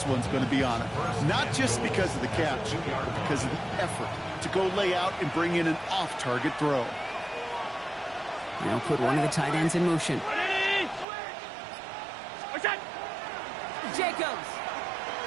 one's going to be on it. Not just because of the catch, but because of the effort to go lay out and bring in an off-target throw. Now put one of the tight ends in motion. Jacobs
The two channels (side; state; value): left; drops out; at 11.1 s